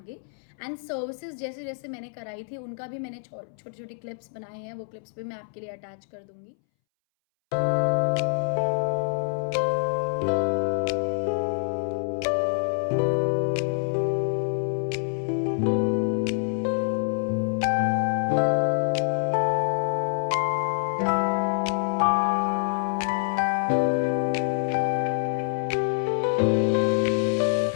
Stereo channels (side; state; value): right; silent; 61 dB below the other